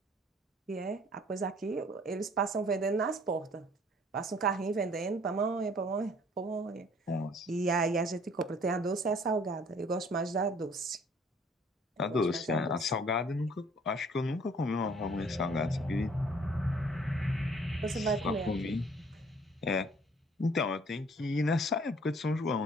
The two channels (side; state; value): both; normal; correlation 0.57